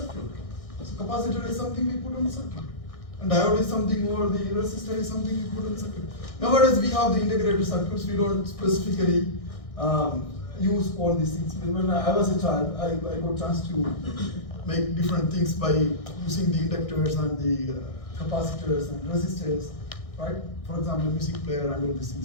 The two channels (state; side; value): late; right; 1.6 ms